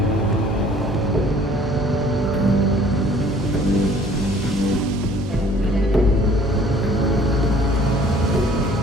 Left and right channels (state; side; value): normal; both; correlation 0.54